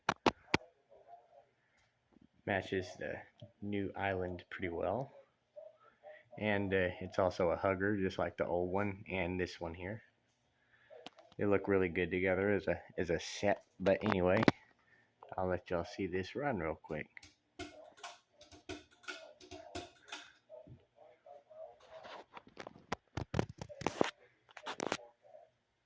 Matches the new island pretty well. And it's also a hugger, just like the old one and this one here. They look really good together as a set. But anyway, I'll let y'all see this run real quick.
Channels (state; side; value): identical; both; correlation 1.00